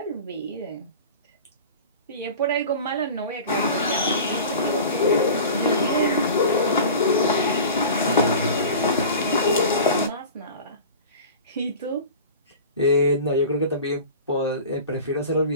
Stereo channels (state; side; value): inverted; both; correlation -0.37